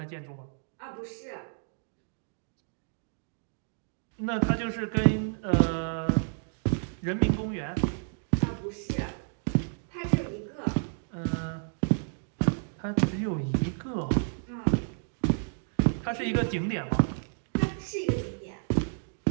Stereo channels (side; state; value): left; silent; digital silence